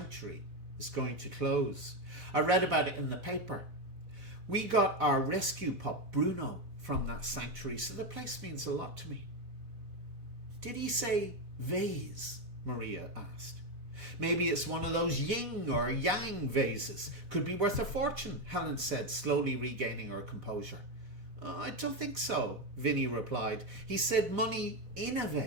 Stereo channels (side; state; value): left; late; 4.0 ms